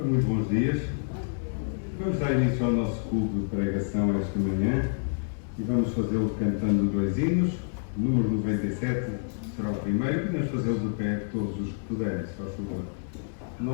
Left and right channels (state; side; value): silent; right; 59 dB below the other